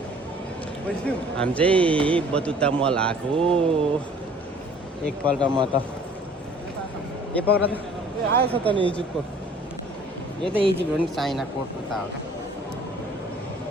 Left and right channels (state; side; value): normal; both; correlation 0.53